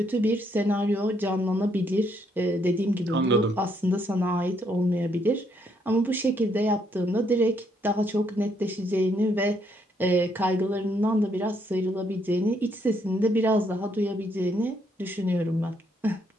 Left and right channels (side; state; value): both; normal; correlation 0.72